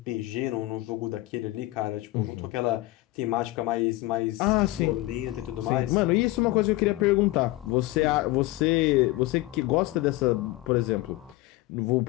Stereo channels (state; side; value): quieter; right; 18.8 dB